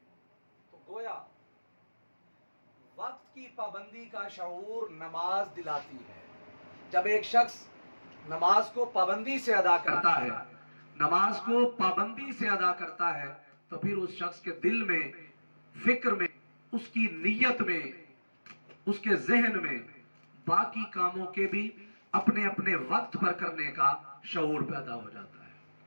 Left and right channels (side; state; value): both; inverted; correlation -1.00